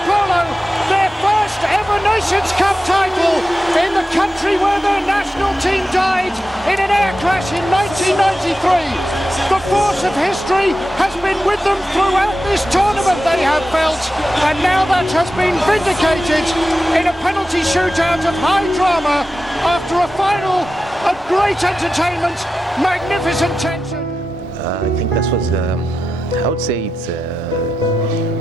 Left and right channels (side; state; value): both; normal; correlation 0.91